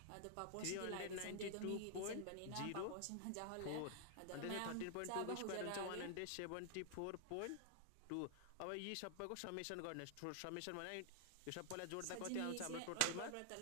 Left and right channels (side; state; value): both; different; correlation 0.00